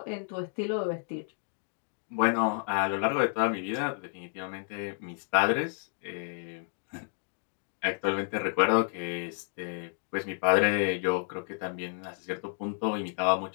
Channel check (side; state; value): right; silent; 57 dB below the other